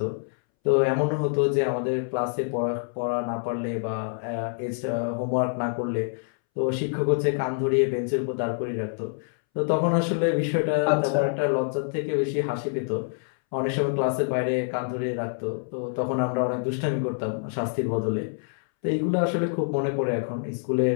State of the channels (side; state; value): right; silent; 61 dB below the other